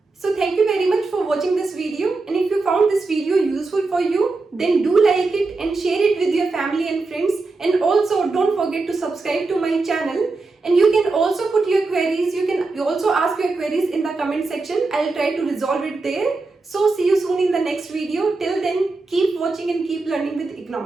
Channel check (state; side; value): quieter; left; 3.7 dB